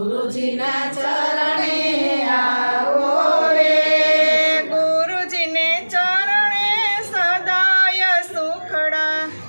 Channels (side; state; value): both; inverted; correlation -1.00